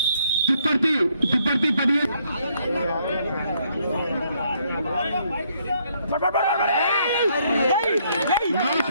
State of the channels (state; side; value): inverted; both; correlation -0.70